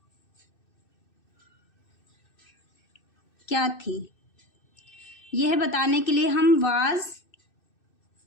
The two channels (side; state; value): right; late; 2.6 ms